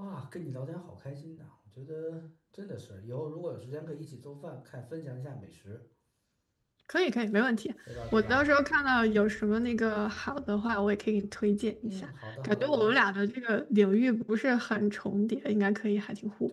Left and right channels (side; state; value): both; identical; correlation 1.00